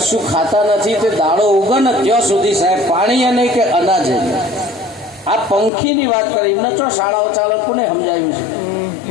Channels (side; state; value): right; drops out; at 5.7 s